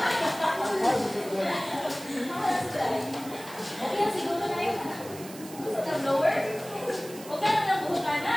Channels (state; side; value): noise; right; hiss, 16 dB below the sound